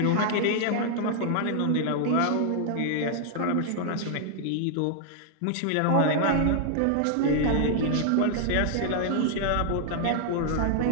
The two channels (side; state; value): both; different; correlation 0.00